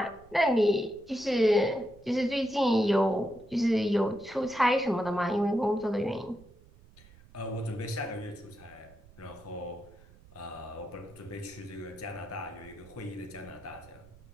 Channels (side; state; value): right; noise; rumble, 24 dB below the sound